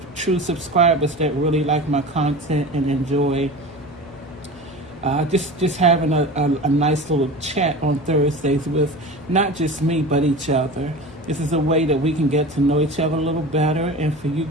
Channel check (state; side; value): noise; left; hum, 23 dB below the sound